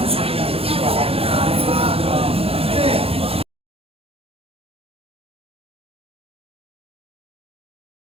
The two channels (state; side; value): late; left; 0.28 ms